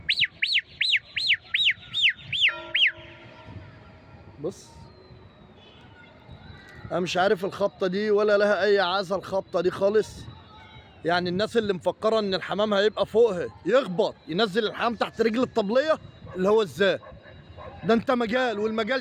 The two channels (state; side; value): identical; both; correlation 1.00